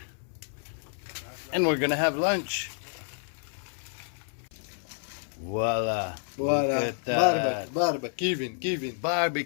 And we're gonna have lunch. Voila. Look at that. Kevin.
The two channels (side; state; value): right; silent; 58 dB below the other